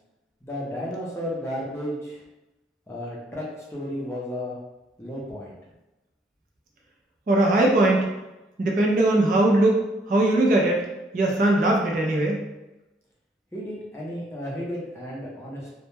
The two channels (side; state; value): both; normal; correlation 0.67